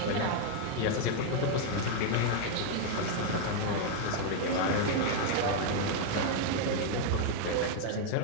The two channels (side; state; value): both; different; correlation 0.00